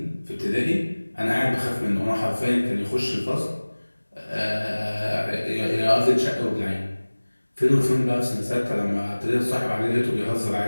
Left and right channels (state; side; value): inverted; both; correlation -1.00